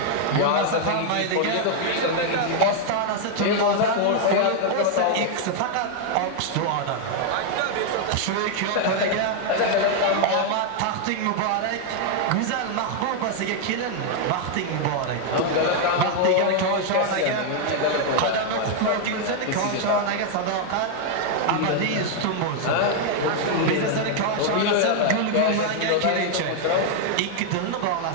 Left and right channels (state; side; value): different; both; correlation 0.00